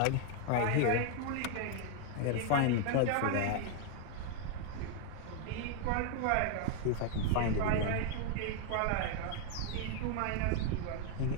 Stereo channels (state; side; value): different; both; correlation 0.01